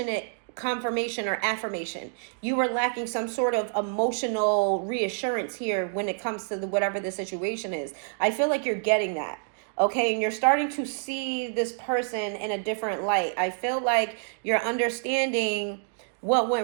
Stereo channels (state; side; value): silent; left; digital silence